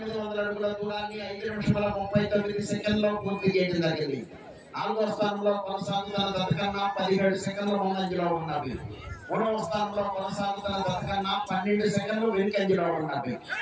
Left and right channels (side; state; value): both; identical; correlation 1.00